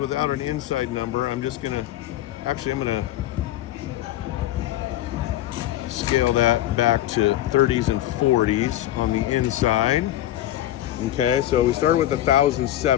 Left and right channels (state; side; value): quieter; right; 13.6 dB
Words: an inside number, I'm gonna scale that back to 30s and 40s on the inside. Okay, so we started with